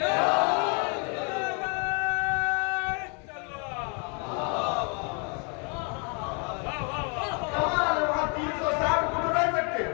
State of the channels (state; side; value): quieter; right; 36.7 dB